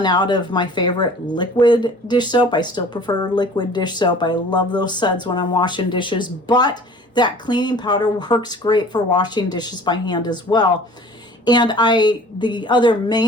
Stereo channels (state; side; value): normal; both; correlation 0.47